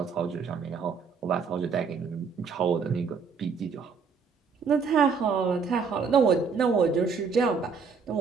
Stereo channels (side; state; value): left; quieter; 5.5 dB